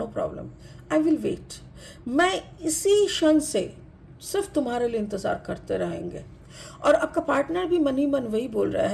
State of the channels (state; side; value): identical; both; correlation 1.00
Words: problem, I will wait. मैं इसी क्षण से सिर्फ तुम्हारे लिए इंतज़ार करते रहेंगे। और आपका पार्टनर भी मन ही मन वही बोल रहा